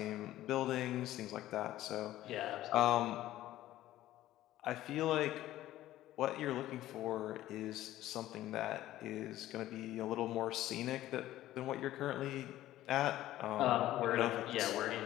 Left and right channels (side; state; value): right; quieter; 14.5 dB